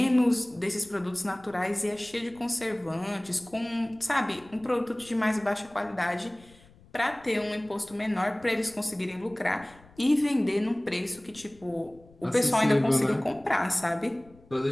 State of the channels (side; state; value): left; noise; rumble, 26 dB below the sound